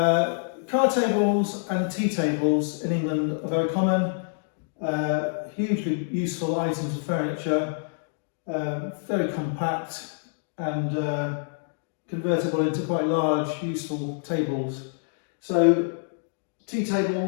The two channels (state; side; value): silent; right; digital silence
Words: tables and tea tables in England are very common, hugely useful items of furniture, very compact and convertible into quite large, useful tables. So tea